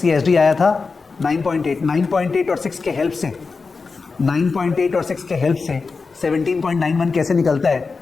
ये एसडी आया था 9.8। 9.8 और 6 के हेल्प से, 9.8 और 6 के हेल्प से 17.91 कैसे निकलता है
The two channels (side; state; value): right; quieter; 4.5 dB